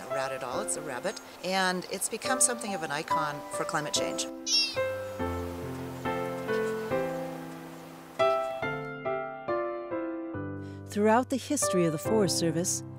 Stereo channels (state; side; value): identical; both; correlation 1.00